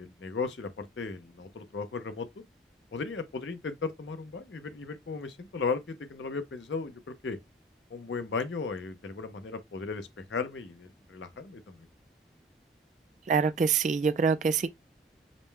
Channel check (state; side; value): normal; both; correlation 0.36